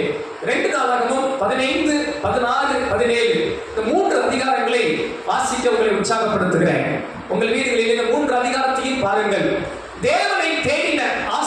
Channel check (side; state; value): both; identical; correlation 1.00